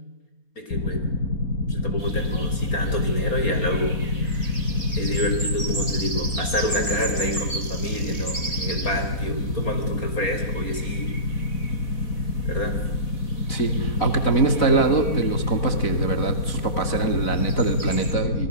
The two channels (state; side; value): late; right; 4.1 ms